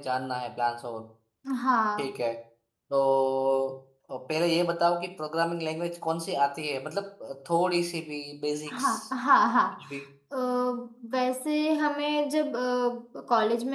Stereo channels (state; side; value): identical; both; correlation 1.00